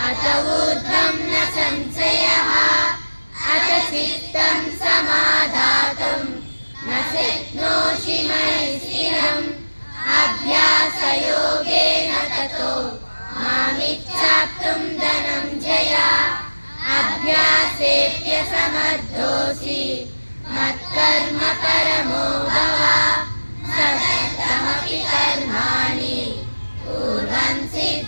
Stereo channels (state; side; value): inverted; both; correlation -1.00